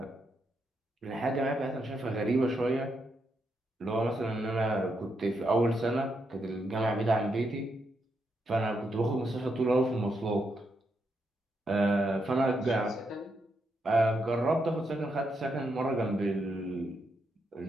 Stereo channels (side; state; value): both; normal; correlation 0.81